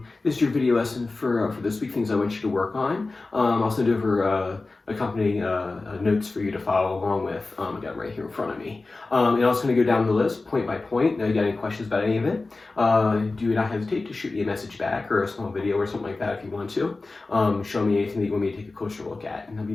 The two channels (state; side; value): quieter; right; 3.5 dB